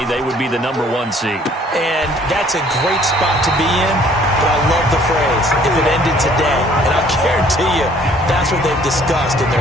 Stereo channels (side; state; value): both; normal; correlation 0.58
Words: they would be the #1 seed. And that's a great spot to be in, but I love the phrase, if it ended today. And I'll guarantee you, that's what they've discussed in